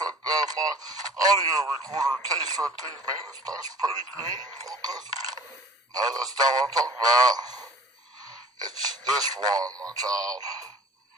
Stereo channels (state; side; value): normal; both; correlation 0.46